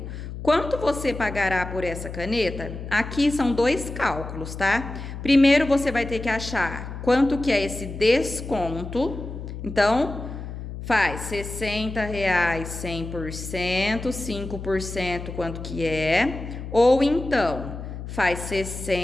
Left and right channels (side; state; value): left; noise; hum, 9 dB below the sound